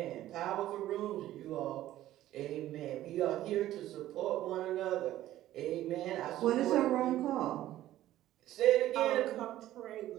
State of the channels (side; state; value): left; quieter; 14.0 dB